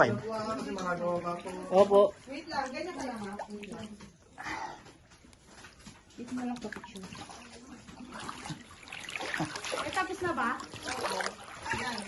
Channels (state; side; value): identical; both; correlation 1.00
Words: Opo. Tapos na ba?